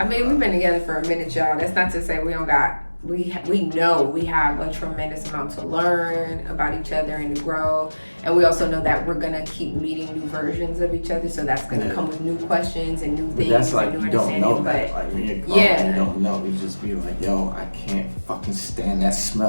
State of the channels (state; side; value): inverted; both; correlation -1.00